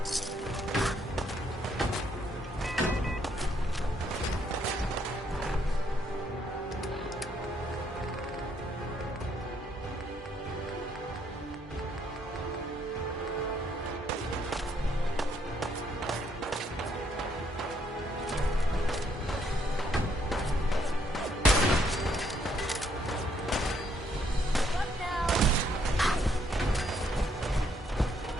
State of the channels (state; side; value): normal; both; correlation 0.71